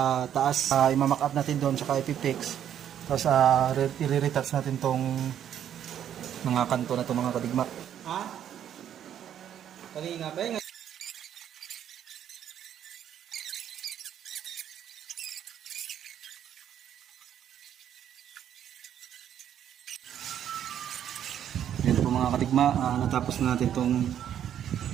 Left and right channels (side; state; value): left; quieter; 9.9 dB